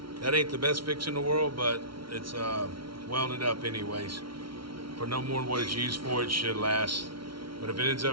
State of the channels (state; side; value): late; left; 0.74 ms